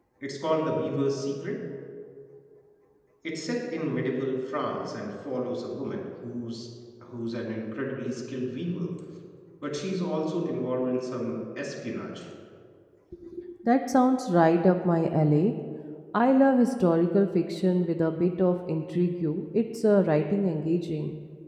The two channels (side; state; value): both; identical; correlation 1.00